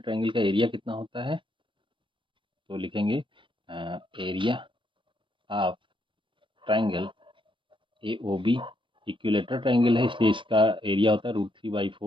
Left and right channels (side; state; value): left; late; 0.24 ms